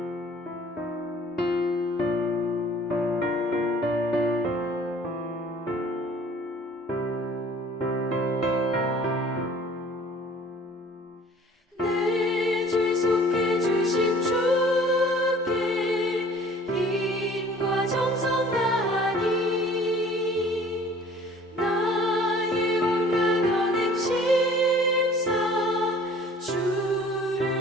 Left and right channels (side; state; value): both; normal; correlation 0.51